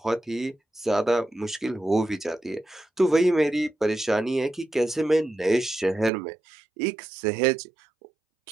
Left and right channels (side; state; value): left; drops out; at 6.1 s